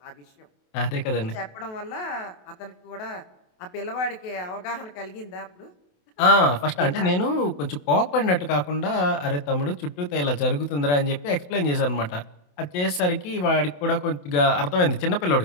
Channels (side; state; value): right; late; 28 ms